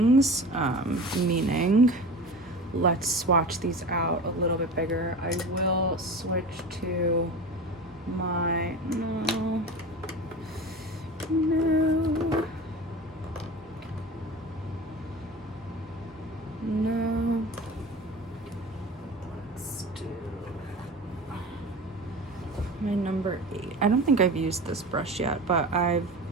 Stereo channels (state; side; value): normal; both; correlation 0.33